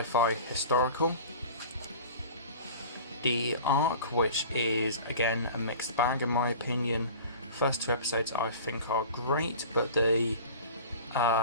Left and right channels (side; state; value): both; inverted; correlation -0.39